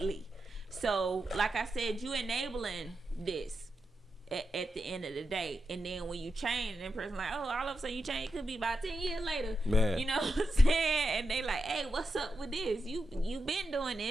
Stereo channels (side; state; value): both; normal; correlation 0.88